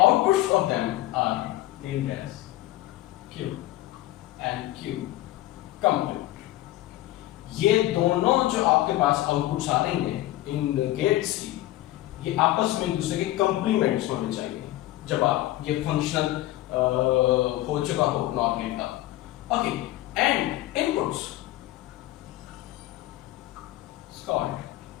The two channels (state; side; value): quieter; right; 16.1 dB